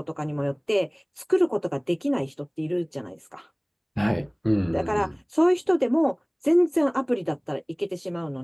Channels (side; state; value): both; identical; correlation 1.00